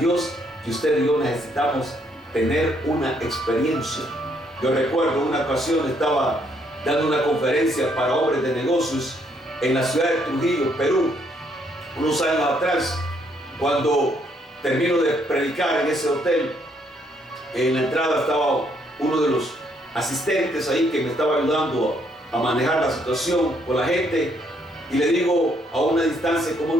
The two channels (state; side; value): normal; both; correlation 0.70